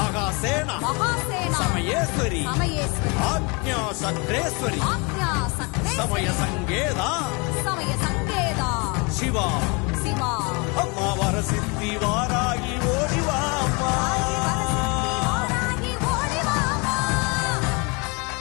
மகாசேனா சமயேஸ்வரி சமயேஸ்வரி ஆக்ஞா சக்ரேஸ்வரி ஆக்ஞா சக்ரேஸ்வரி சமய சங்கேதா சமய சங்கேதா சிவா சிவா அம்மா வரசித்தி வாராகி ஓடிவா அம்மா வாராகி ஓடிவாமா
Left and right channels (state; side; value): quieter; right; 30.2 dB